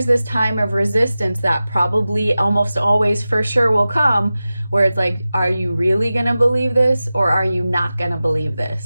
this time of resistance that probably almost always for sure will come, where it's like, are you really going to believe this, or are you not going to believe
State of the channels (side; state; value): both; inverted; correlation -0.95